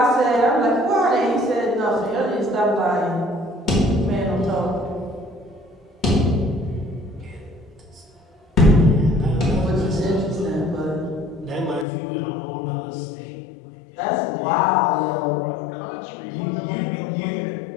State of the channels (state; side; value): drops out; right; at 11.9 s